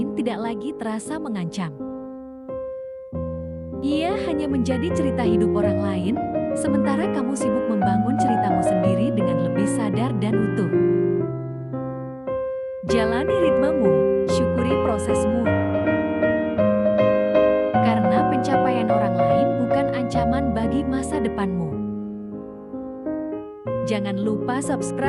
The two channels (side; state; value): both; identical; correlation 1.00